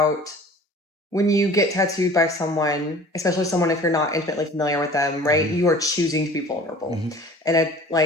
when you get tattooed by someone, especially someone if you're not intimately familiar with them, right? You are choosing to be vulnerable. And it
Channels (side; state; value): both; normal; correlation 0.45